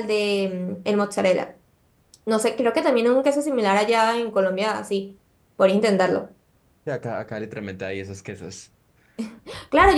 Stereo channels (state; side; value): identical; both; correlation 1.00